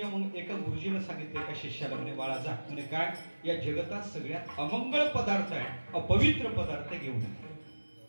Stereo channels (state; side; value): inverted; both; correlation -1.00